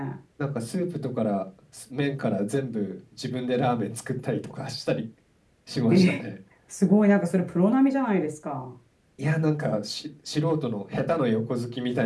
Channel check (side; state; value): both; identical; correlation 1.00